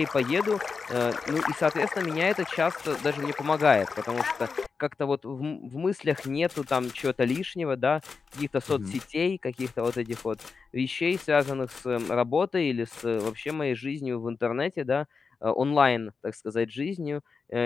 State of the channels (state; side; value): quieter; right; 5.0 dB